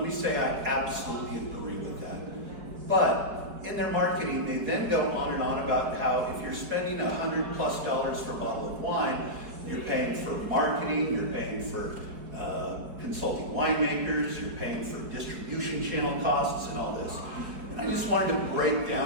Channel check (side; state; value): left; late; 4.8 ms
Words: me say, I absolutely agree with that. But in their marketing, they then go on and on about how if you're spending $100+ for a bottle of wine, you're paying for marketing, you're paying for consulting winemakers, you're paying for distribution channel costs and all this. And I just wanted to break